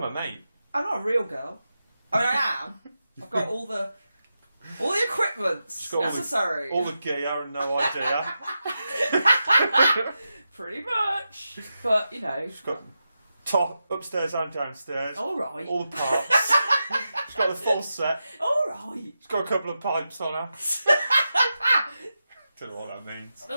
mate. I'm not a real girl. I mean, I am. I've got all the equipments necessary. All the gear and no idea. Pretty much. But, She's got top, upstairs and downstairs. All right. All the parts. She's got the full set. All right. She's got a couple of pipes on her. Don't know what that means.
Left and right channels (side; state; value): both; inverted; correlation -0.90